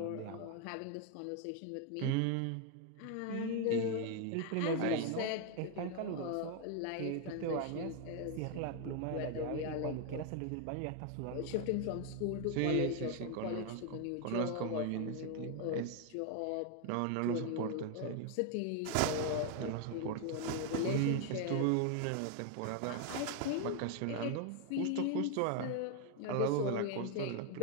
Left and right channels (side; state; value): both; different; correlation 0.01